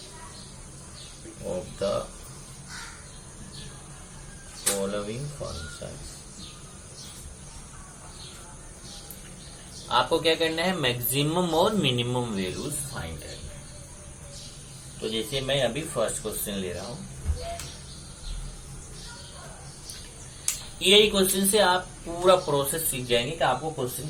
आपको क्या करना है, मैक्सिमम और मिनिमम वैल्यूज फाइंड करना है। तो जैसे मैं अभी फर्स्ट क्वेश्चन ले रहा हूं, यही क्वेश्चन से आप पूरा प्रोसेस सीख जाएंगे कि आपको क्वेश्चन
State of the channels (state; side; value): identical; both; correlation 1.00